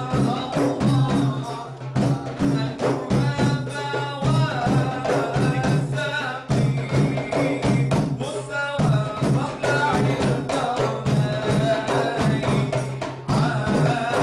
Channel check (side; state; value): both; identical; correlation 1.00